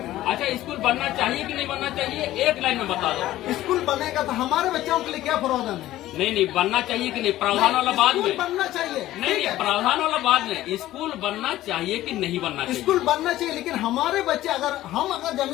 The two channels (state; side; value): quieter; right; 14.9 dB